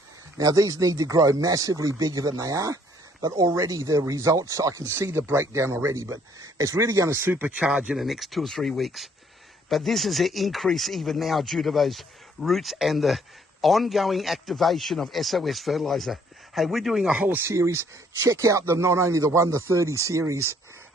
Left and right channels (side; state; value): both; normal; correlation 0.64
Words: Now these need to grow massively bigger than they are, but already the results, I can see the breakdown already, but it's really going to supercharge in the next 2 or 3 weeks. But this is an increase even now due to those roots and the ongoing activation of SOS fertilizer. Hey, we're doing a whole series. Check out not only the 1 to 30 series,